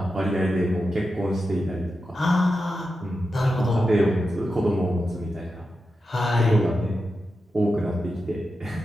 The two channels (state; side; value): normal; both; correlation 0.89